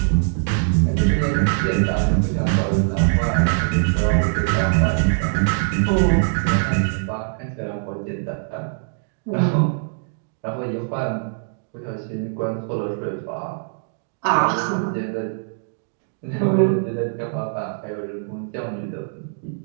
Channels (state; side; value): silent; left; digital silence